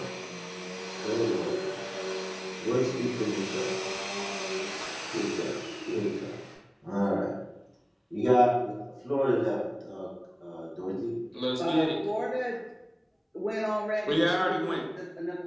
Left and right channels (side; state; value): both; identical; correlation 1.00